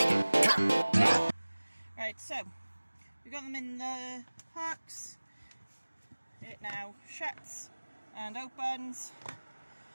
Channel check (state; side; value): inverted; both; correlation -1.00